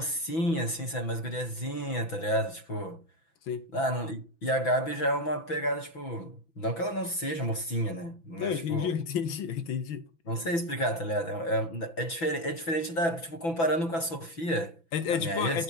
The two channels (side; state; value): right; late; 6.0 ms